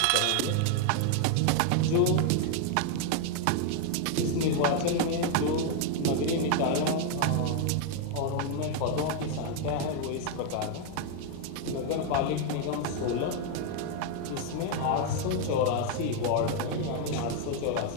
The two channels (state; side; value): different; both; correlation 0.00